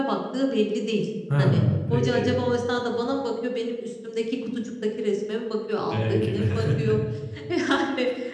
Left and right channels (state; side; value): identical; both; correlation 1.00